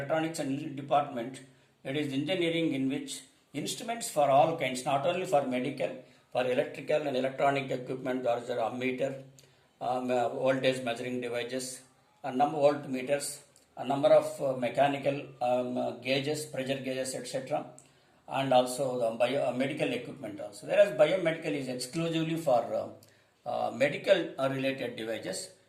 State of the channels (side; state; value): both; identical; correlation 1.00